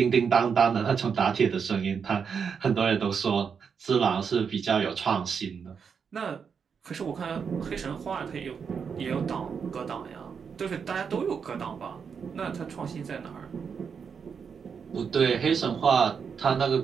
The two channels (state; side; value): quieter; left; 6.4 dB